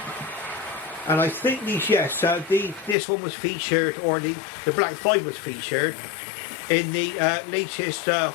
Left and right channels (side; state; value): right; drops out; at 3.0 s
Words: And I think these, yes, this one was featured, or the Black 5 was featured in the latest